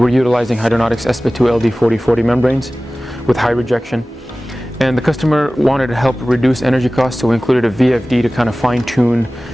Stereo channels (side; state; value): both; normal; correlation 0.97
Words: utilizing Hydranautics SP2 LD4040 membranes with high rejection. And the customer wanted to help reduce energy costs, so we included a VFD to kind of fine tune